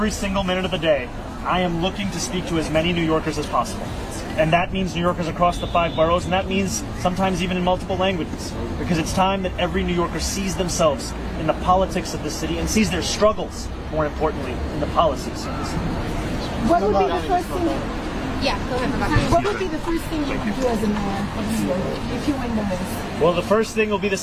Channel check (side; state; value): both; identical; correlation 1.00